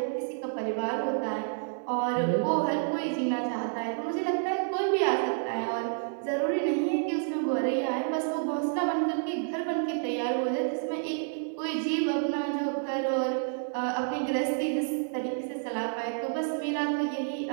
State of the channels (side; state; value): left; silent; 58 dB below the other